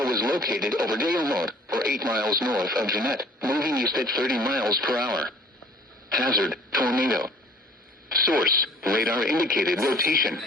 was located over Dale Road, or 8 miles north of Jeanette, moving east at 30 miles per hour. Hazard, tornado. Source, radar indicated rotation.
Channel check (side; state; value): both; normal; correlation 0.51